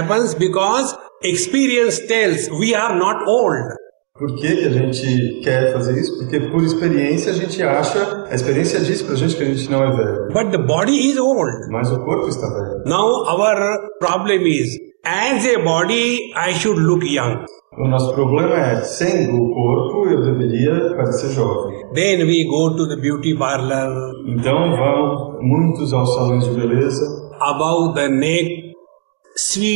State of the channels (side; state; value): left; silent; 62 dB below the other